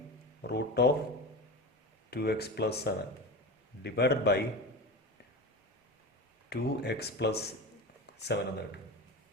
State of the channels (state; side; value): normal; both; correlation 0.26